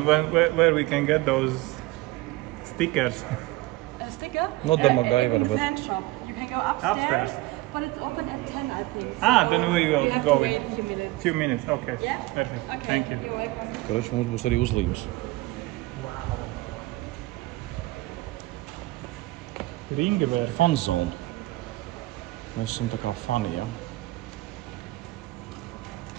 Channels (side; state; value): left; quieter; 19.8 dB